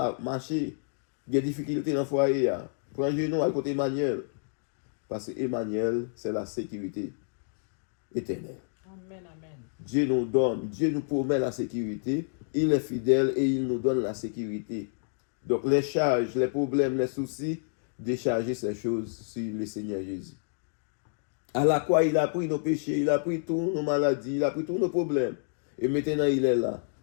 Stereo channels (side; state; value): right; silent; digital silence